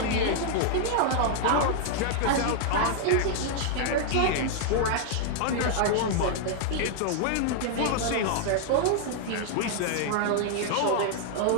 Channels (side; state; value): both; different; correlation -0.01